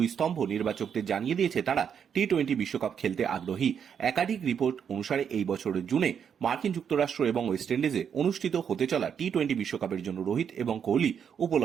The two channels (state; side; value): quieter; left; 7.7 dB